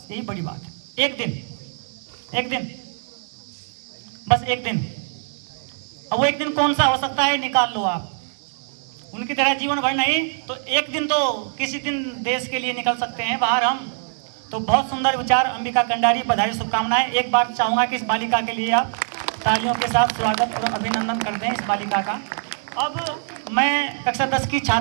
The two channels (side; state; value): left; silent; digital silence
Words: यही बड़ी बात है। एक दिन बस एक दिन। अब वो एक दिन कौन सा हो सकता है निकाल लो आप। उनकी तरह जीवन भर नहीं तो एक दिन तो किसी दिन देश के लिए निकल सकते हैं बाहर हम। तो बहुत सुंदर विचार अंबिका कंडारी, बधाई शुभकामनाएं। एक बार चाहूंगा कि इस बालिका के लिए आप तालियों के साथ स्वागत और अभिनंदन करते हैं इस बालिका का। अब मैं कक्षा 10 की